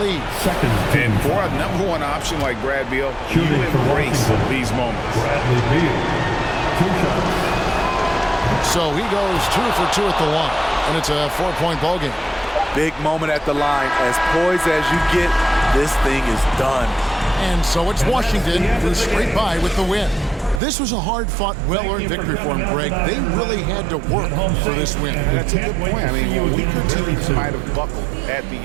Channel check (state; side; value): drops out; left; at 20.6 s